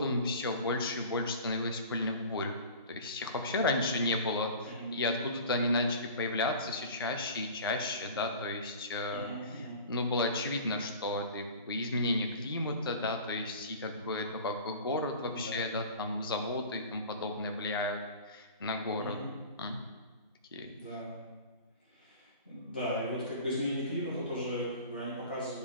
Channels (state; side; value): inverted; both; correlation -0.39